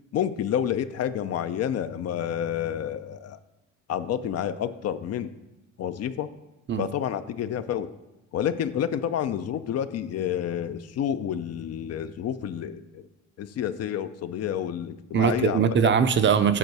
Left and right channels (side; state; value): both; normal; correlation 0.11